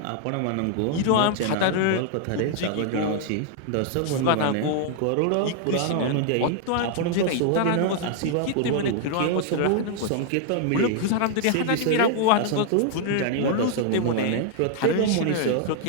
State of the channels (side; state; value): both; different; correlation 0.00